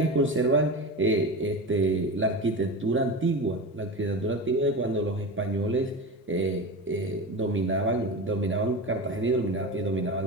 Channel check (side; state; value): both; normal; correlation 0.26